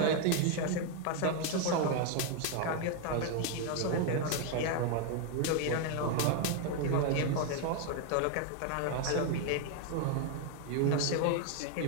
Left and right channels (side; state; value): both; different; correlation 0.01